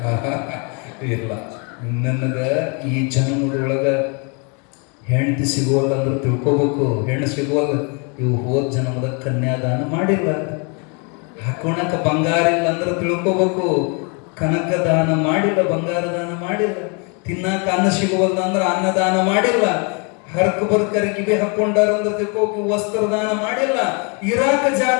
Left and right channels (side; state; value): right; quieter; 34.4 dB